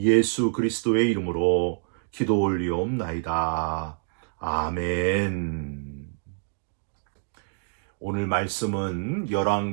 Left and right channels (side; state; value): left; silent; digital silence